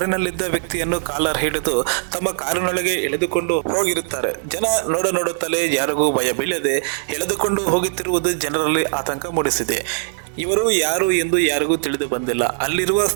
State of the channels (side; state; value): left; silent; digital silence